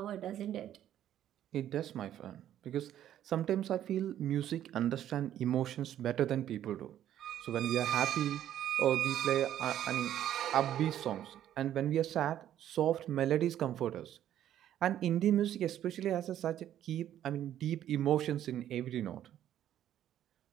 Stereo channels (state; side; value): quieter; left; 11.4 dB